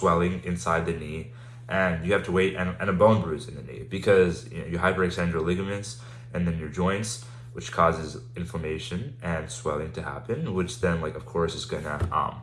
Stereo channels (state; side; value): identical; both; correlation 1.00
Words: inside the knee, and you have to wait and a bone bruise in the knee because you hyperextend your ligaments and then your joints, which causes inflammation and swelling to happen, which then like of course is gonna